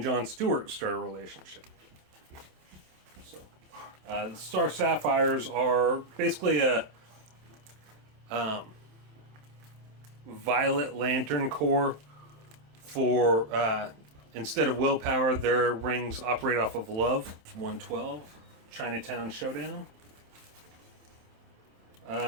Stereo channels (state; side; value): late; left; 27 ms